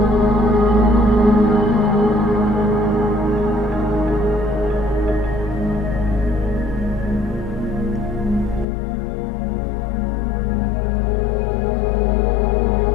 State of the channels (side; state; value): right; drops out; at 8.7 s